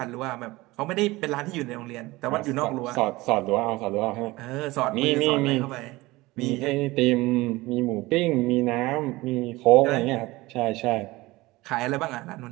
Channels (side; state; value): left; quieter; 20.4 dB